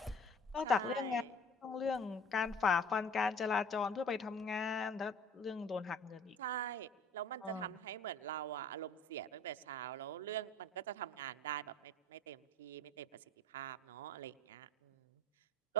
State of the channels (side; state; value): both; normal; correlation 0.49